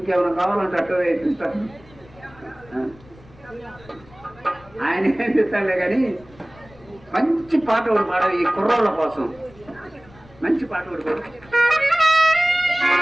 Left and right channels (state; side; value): noise; left; rumble, 25 dB below the sound